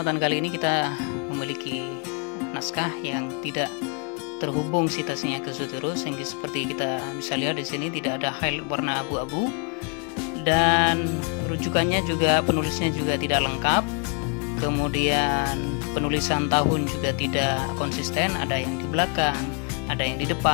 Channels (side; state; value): right; quieter; 37.9 dB